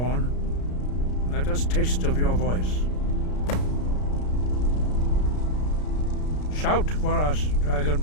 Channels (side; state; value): right; late; 33 ms